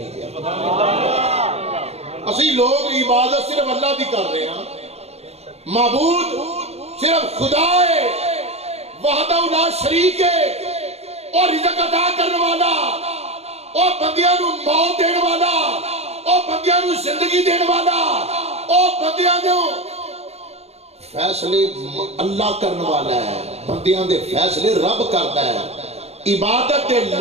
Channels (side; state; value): left; late; 0.31 ms